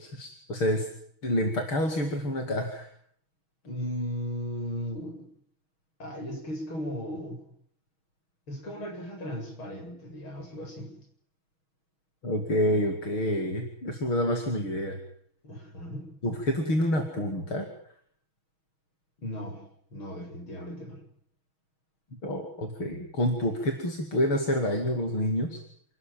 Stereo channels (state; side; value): late; right; 6.3 ms